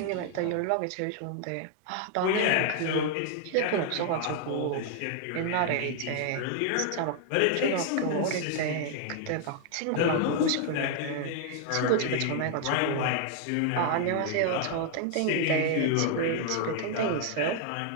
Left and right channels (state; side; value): different; both; correlation 0.00